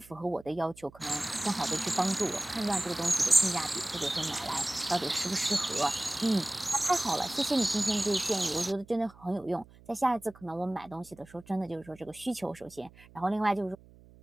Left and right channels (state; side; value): noise; right; hum, 24 dB below the sound